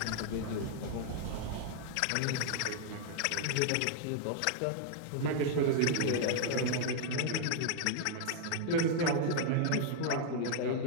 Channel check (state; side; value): different; both; correlation -0.01